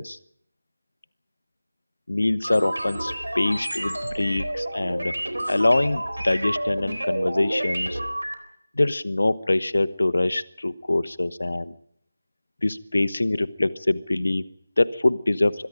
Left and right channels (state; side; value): inverted; both; correlation -0.99